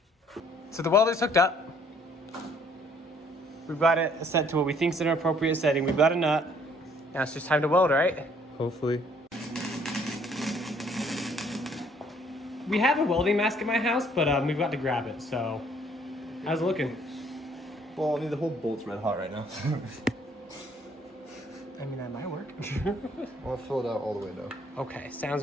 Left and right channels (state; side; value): normal; both; correlation 0.62